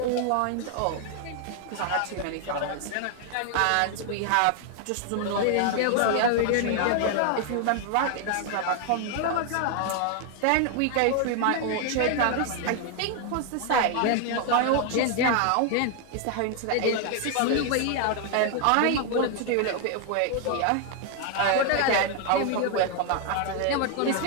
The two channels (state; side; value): different; both; correlation 0.00